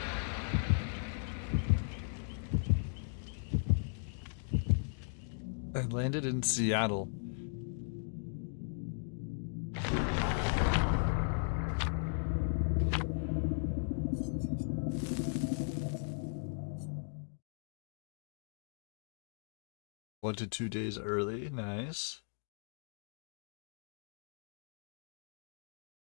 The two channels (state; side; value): silent; right; digital silence